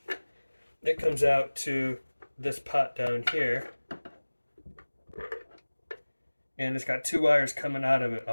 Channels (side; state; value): both; inverted; correlation -1.00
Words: it comes out to this pot down here. And it's got two wires coming out of it.